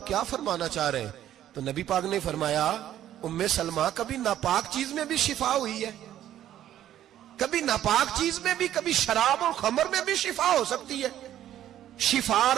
क्या फरमाना चाह रहे हैं? तो नबी पाक ने फरमाया उम्मे सलमा कभी नापाक चीज में भी शिफा हुई है, कभी नापाक चीज में भी, कभी शराब और खमर में भी शिफा हो सकती है। शिफा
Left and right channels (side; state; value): left; quieter; 11.8 dB